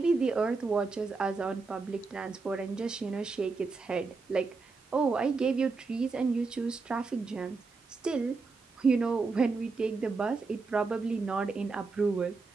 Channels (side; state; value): left; quieter; 4.2 dB